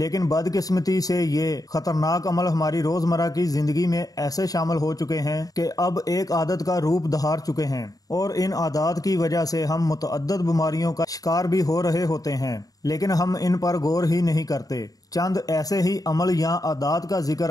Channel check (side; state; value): right; late; 0.18 ms